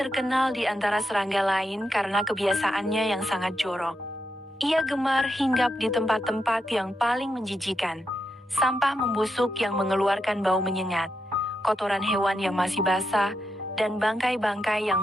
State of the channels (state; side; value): normal; both; correlation 0.84